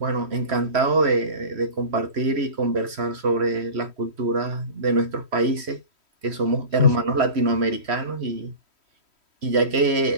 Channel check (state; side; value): late; left; 3.1 ms